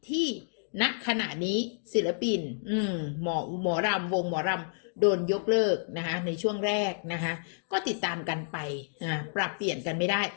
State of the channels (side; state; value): right; silent; digital silence